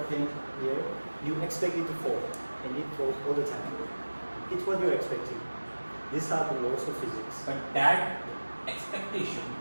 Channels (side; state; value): both; inverted; correlation -1.00